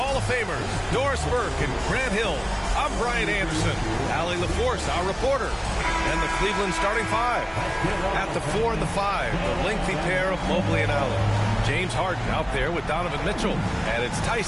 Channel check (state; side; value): identical; both; correlation 1.00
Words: of Famers, Doris Burke and Grant Hill, I'm Brian Anderson, Allie LaForce, our reporter, and the Cleveland starting five. At the 4 and the 5, the lengthy pair of Mobley and Allen. James Harden out there with Donovan Mitchell, and it's